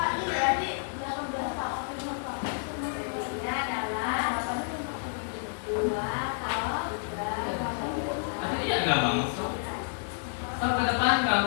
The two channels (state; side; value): silent; right; digital silence